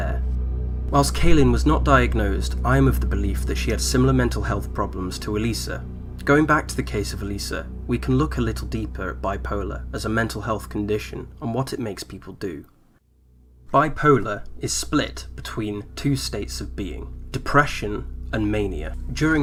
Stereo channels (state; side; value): identical; both; correlation 1.00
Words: Whilst Kaylin was not diagnosed, I am of the belief that she had similar mental health problems to Elisa. Going back to the case of Elisa, we can look a little deeper at bipolar as a mental health condition and what it makes people do. Bipolar is split between two states of being, depression and mania.